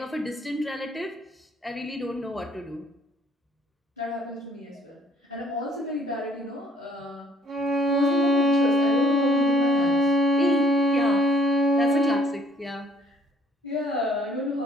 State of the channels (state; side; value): normal; both; correlation 0.61